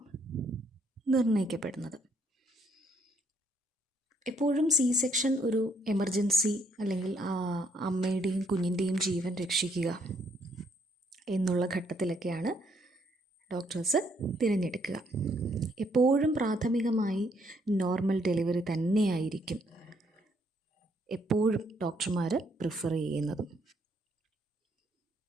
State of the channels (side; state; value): both; normal; correlation 0.69